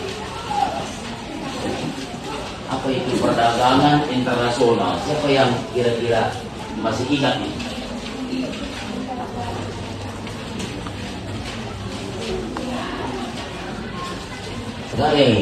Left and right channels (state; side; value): identical; both; correlation 1.00